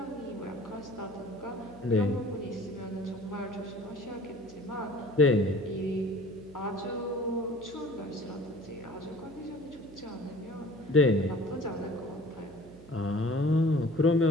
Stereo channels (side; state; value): right; noise; hum, 20 dB below the sound